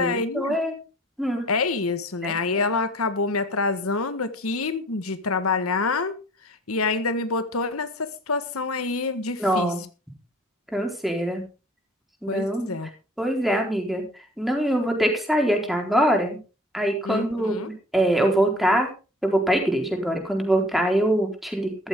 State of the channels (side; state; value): both; normal; correlation 0.50